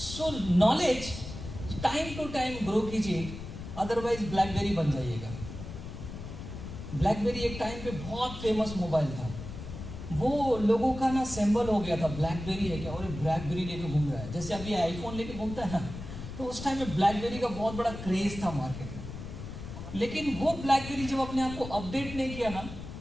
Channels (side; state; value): left; noise; rumble, 10 dB below the sound